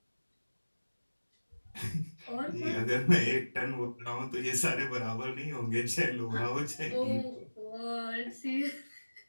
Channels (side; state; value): both; inverted; correlation -1.00